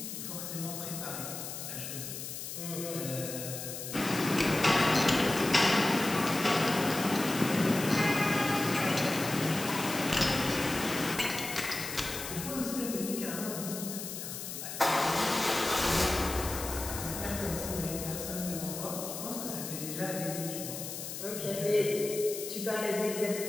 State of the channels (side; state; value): left; noise; hiss, 7 dB below the sound